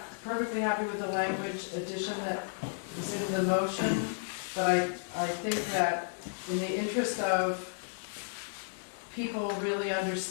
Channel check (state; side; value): silent; right; 56 dB below the other